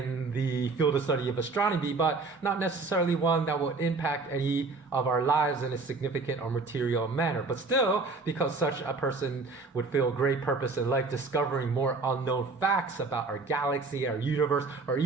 the field of study of astronomy, but not necessarily one that would impact any of our lives in a significant or material manner. But still, because such a person would feel great purpose in life, discovering more unknown facts about our galaxy, our universe, or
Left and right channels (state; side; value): quieter; left; 3.9 dB